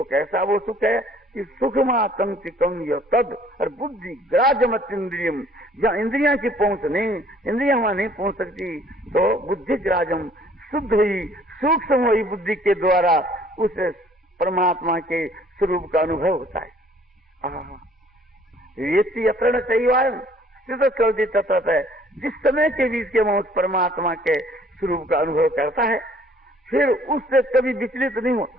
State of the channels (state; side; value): normal; both; correlation 0.58